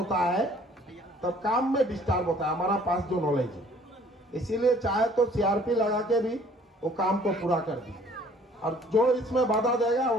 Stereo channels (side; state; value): both; normal; correlation 0.56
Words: है तब काम में डिस्टर्ब होता है, हमारा पास जो नॉलेज है। इसीलिए चाहे तो सीआरपी लगा के भी वो काम को पूरा कर दी, और जो इसमें बाधा देगा